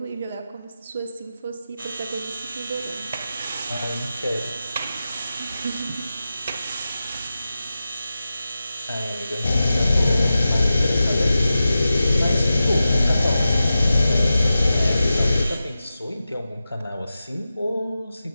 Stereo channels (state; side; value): inverted; both; correlation -0.93